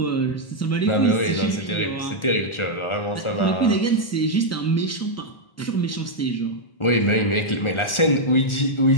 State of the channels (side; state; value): right; late; 1.4 ms